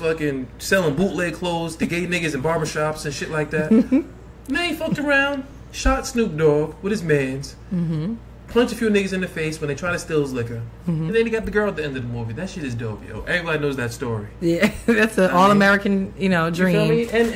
selling bootleg clothes to gay niggas in barbershops and shit like that. Then he fucked around, shot Snoop Dogg with his mans, punched a few niggas in the face when they try to steal his liquor, and then he got the girl at the end of the movie. That shit is dope, yo. Everybody knows that story. Yeah, that's an all-American, dream. You feel me?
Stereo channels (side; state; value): both; identical; correlation 1.00